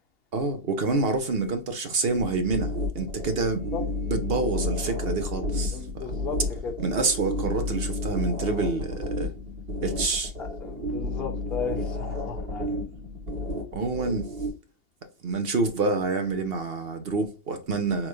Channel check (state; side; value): late; left; 2.8 ms